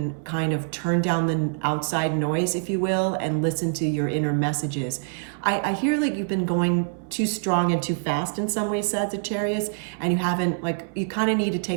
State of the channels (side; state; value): left; silent; 62 dB below the other